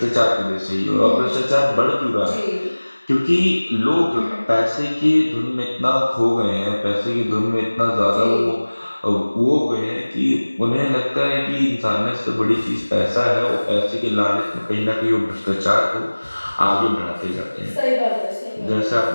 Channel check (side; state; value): both; inverted; correlation -1.00